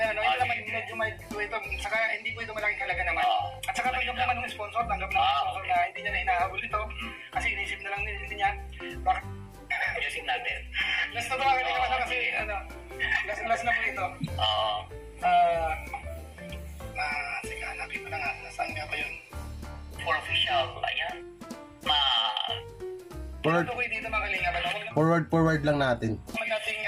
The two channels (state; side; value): identical; both; correlation 1.00